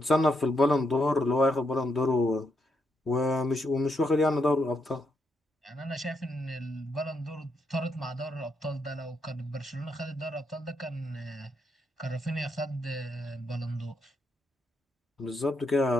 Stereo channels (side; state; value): both; normal; correlation 0.80